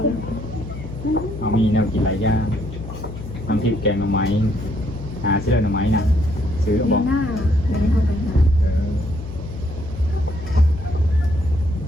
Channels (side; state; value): left; noise; hum, 10 dB below the sound